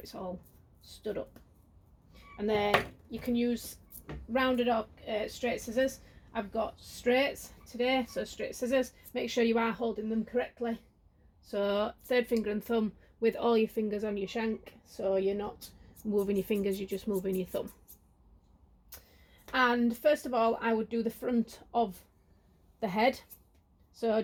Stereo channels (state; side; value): identical; both; correlation 1.00